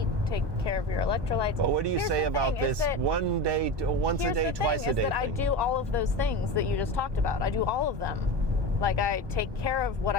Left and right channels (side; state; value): left; late; 1.2 ms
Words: Take care of your electrolytes. Well, what do you say about this once a day, twice a day thing? I do all of those things that you just talked about. I do all of them. Like I take care of what